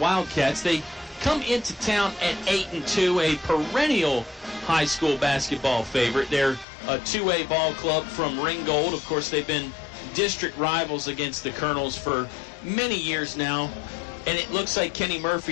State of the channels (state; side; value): drops out; right; at 6.7 s